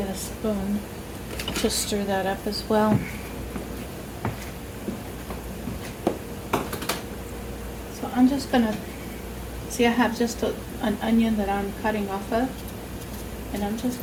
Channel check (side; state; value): both; identical; correlation 1.00